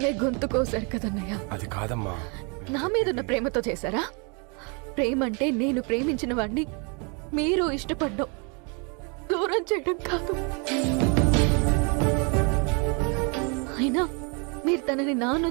గొంతు కోసారు కదన్నయ్య. అది కాదమ్మా. నా మీదున్న ప్రేమతో చేశారా? ప్రేమంటే నేను ప్రేమించిన వాడిని మీరు ఇష్టపడ్డం, దూరం చేయడం కాదు. అయినా మీరు తనని నా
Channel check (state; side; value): quieter; left; 34.3 dB